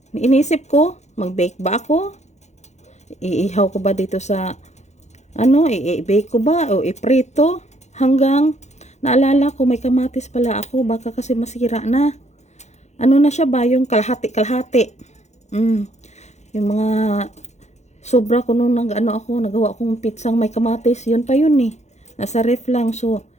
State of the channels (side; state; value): right; late; 0.33 ms